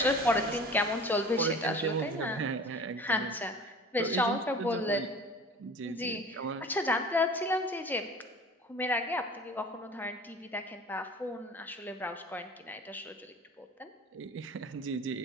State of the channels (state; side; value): normal; both; correlation 0.42